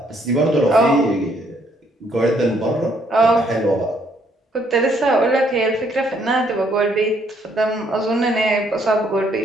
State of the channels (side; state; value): both; normal; correlation 0.68